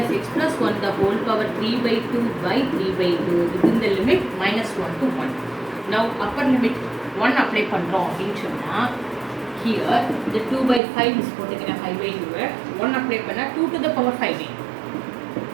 x plus 1 the whole power 3/2 by 3/2 within the limit -1 to 1. Now upper limit 1 apply பண்ணுறோம் அப்படின்னு சொன்னால் here the 2/5 is போட்டுக்கிறேன் 5/2 1 apply பண்ணால் 2 to the power 5/2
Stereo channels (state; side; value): drops out; left; at 10.8 s